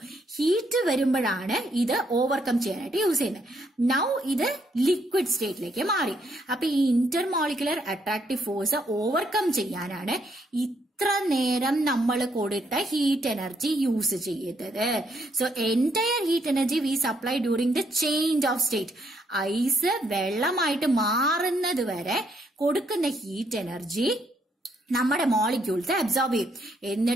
ഹീറ്റ് വരുമ്പോഴാണ് ഇത് ഓവർകം ചെയ്യാനായിട്ട് യൂസ് ചെയ്യുന്നത്. നൗ ഇത് ലിക്വിഡ് സ്റ്റേറ്റിലേക്ക് മാറി. അപ്പൊ ഈ ഇന്റർമോളിക്കുലർ അട്രാക്റ്റീവ് ഫോഴ്സ് ഓവർകം ചെയ്യാനാണ് ഇത്ര നേരം നമ്മൾ കൊടുത്ത ഹീറ്റ് എനർജി യൂസ് ചെയ്തത്. So entire heat energy we supply during the change of state. Ice വെള്ളമായിട്ട് മാറുന്നത് വരെ കൊടുക്കുന്ന ഹീറ്റ് എനർജി നമ്മുടെ മോളിക്യൂൾസ് അബ്സോർബ് ചെയ്യും.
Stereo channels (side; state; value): both; normal; correlation 0.73